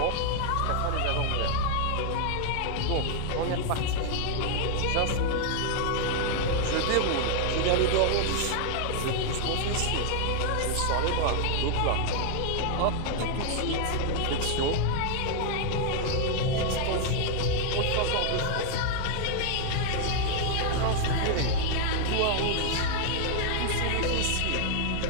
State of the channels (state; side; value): different; both; correlation 0.00